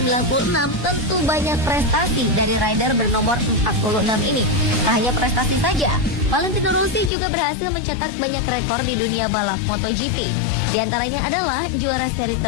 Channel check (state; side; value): drops out; right; at 7.1 s